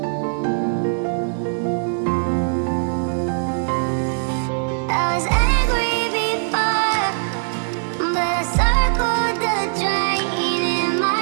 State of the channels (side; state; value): left; silent; digital silence